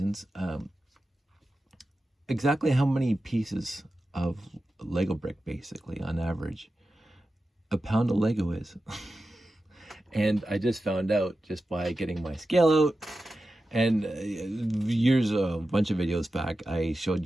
exactly how many pieces of Lego brick, basically on average, a pound of Lego is. And I just found out just by getting my scale out, and a bunch of videos back, I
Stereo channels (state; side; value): normal; both; correlation 0.92